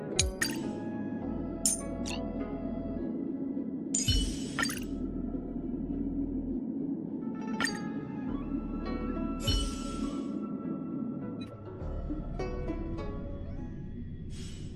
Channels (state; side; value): identical; both; correlation 1.00